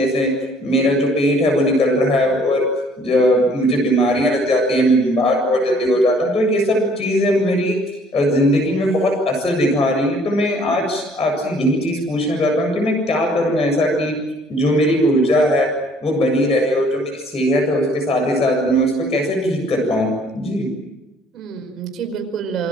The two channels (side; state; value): both; normal; correlation 0.59